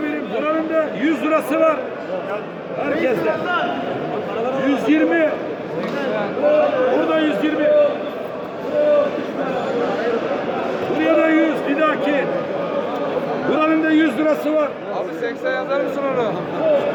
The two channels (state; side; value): identical; both; correlation 1.00